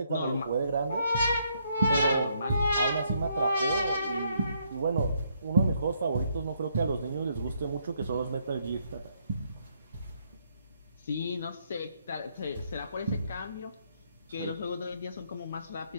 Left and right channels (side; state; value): both; inverted; correlation -0.72